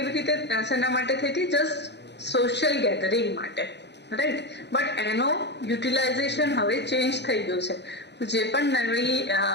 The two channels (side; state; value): right; late; 0.50 ms